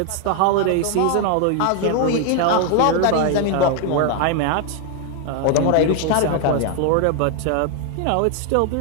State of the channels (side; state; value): both; different; correlation 0.00